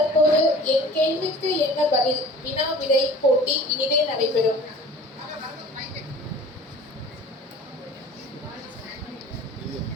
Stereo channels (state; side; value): normal; both; correlation 0.44